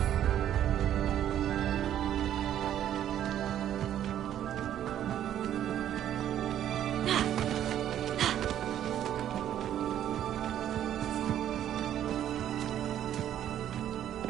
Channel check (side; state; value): left; quieter; 10.9 dB